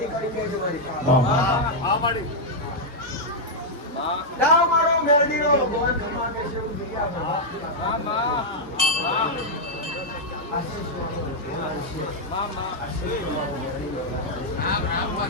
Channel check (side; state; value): both; normal; correlation -0.03